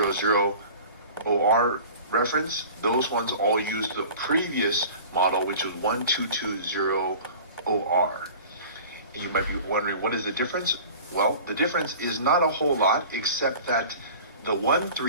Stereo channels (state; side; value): inverted; both; correlation -0.41